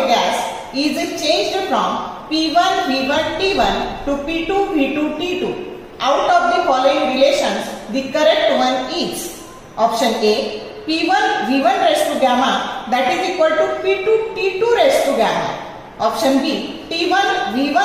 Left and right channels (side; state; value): both; identical; correlation 1.00